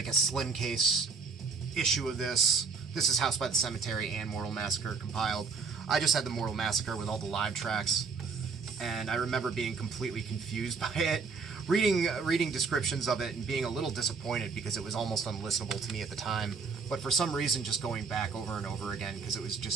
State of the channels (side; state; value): left; quieter; 5.0 dB